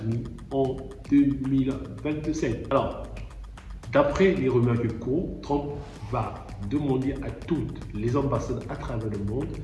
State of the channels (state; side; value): identical; both; correlation 1.00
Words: en 2027. Alors, d'après les rumeurs qui courent, Trump va demander à toutes les ambassades à travers le monde